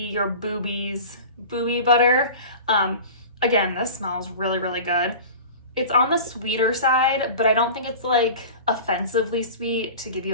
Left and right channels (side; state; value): both; inverted; correlation -0.36